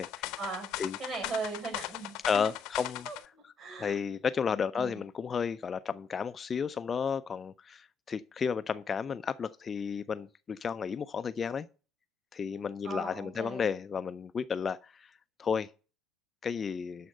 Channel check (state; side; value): quieter; right; 5.5 dB